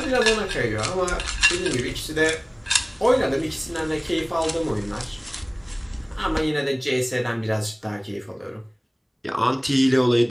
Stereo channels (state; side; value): identical; both; correlation 1.00